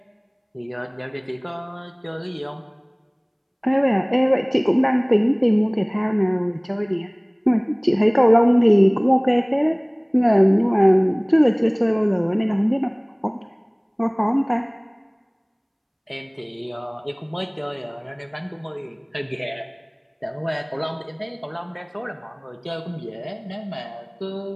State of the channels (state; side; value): identical; both; correlation 1.00